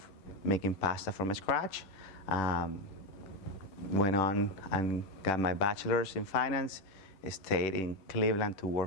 making pasta from scratch. Went on and got my bachelor's in finance. Stayed in Cleveland to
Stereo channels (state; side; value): late; right; 10 ms